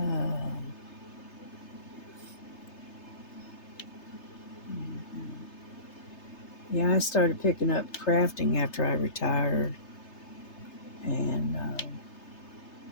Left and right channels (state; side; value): late; right; 3.3 ms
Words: yeah, I started picking up crafting after I retired, and